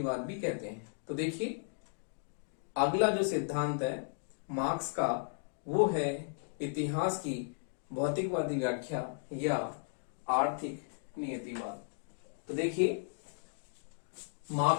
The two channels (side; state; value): right; silent; digital silence